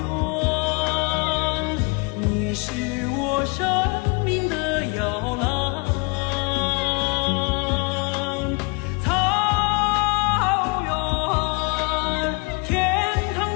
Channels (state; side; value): quieter; right; 29.8 dB